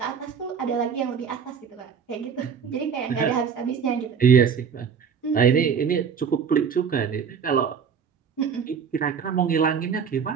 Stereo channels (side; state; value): left; quieter; 6.7 dB